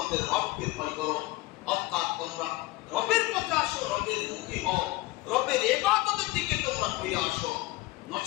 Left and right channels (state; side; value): quieter; right; 19.7 dB